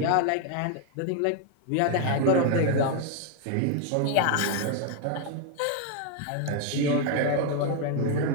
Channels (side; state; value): both; different; correlation 0.01